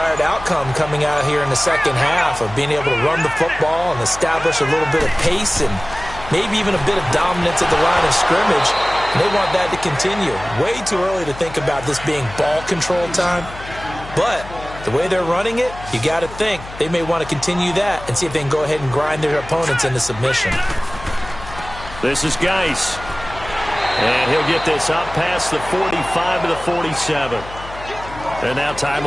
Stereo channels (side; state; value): left; noise; hum, 14 dB below the sound